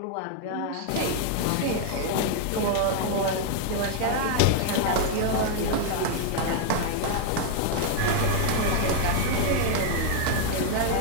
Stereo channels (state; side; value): different; both; correlation 0.00